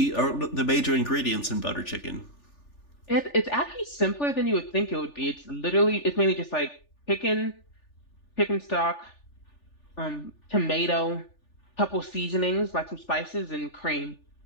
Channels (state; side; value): late; right; 3.4 ms